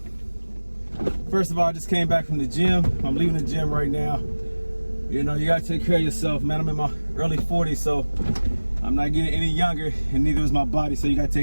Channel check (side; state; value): both; inverted; correlation -1.00